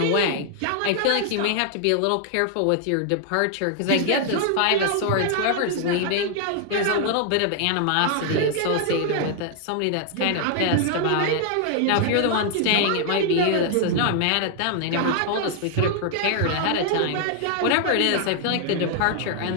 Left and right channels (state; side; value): different; both; correlation 0.00